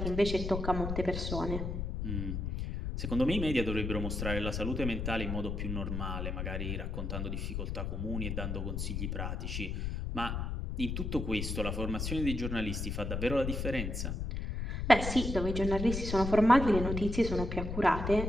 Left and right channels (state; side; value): noise; left; rumble, 3 dB below the sound